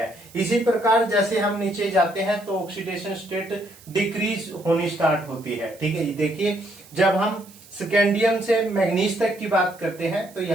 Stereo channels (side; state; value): right; noise; hiss, 23 dB below the sound